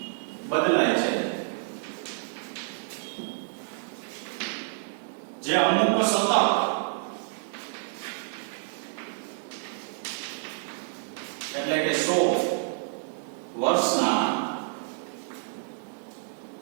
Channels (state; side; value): silent; left; digital silence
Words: બદલાય છે. જે અમુક સતત એટલે કે 100 વર્ષના